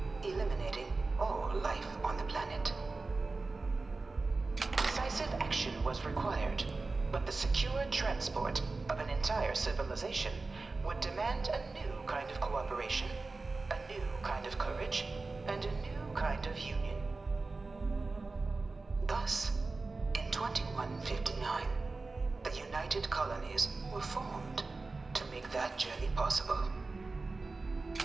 eliminating all life on the planet. Decisive action was required, but the secure transport of an entire civilization would demand a new kind of cooperation, a new kind of courage, and a new kind of union. Thus, in 2159, the United Colonies were formed to make that journey possible.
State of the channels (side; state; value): left; quieter; 3.6 dB